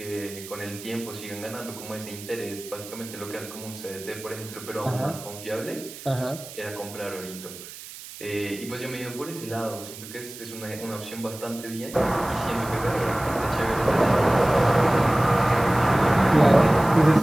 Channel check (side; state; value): right; noise; hiss, 14 dB below the sound